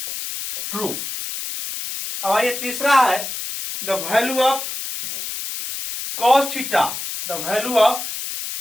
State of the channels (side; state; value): left; noise; hiss, 6 dB below the sound